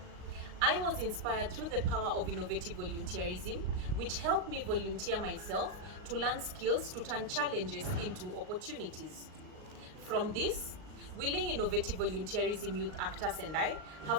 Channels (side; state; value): left; late; 38 ms